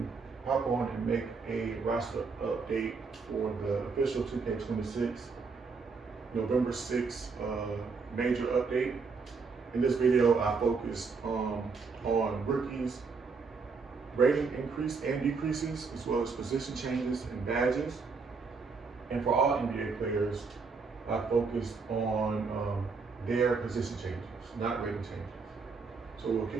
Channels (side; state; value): left; quieter; 4.8 dB